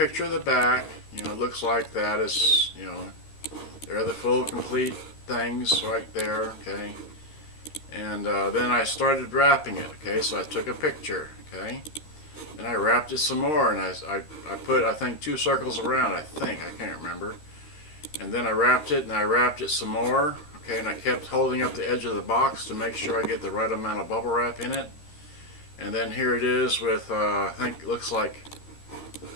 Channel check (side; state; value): right; late; 13 ms